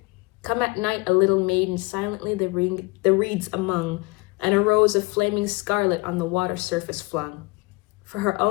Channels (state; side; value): quieter; right; 25.5 dB